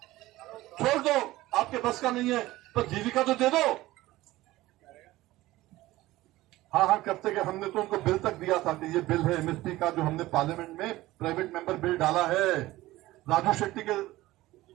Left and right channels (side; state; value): left; quieter; 17.4 dB